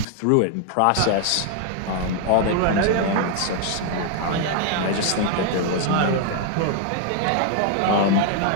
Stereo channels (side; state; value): both; different; correlation 0.00